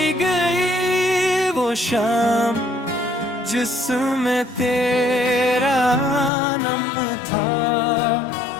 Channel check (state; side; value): drops out; right; at 6.3 s